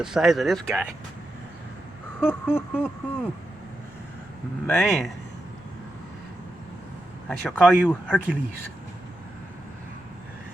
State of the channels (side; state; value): left; noise; rumble, 26 dB below the sound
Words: size of this guy. Man. I shall call you Hercules.